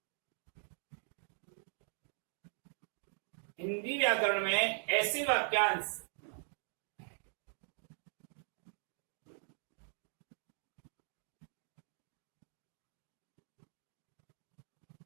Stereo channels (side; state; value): left; silent; digital silence